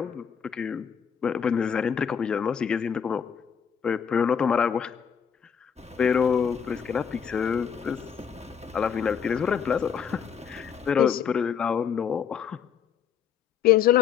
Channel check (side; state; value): right; quieter; 7.6 dB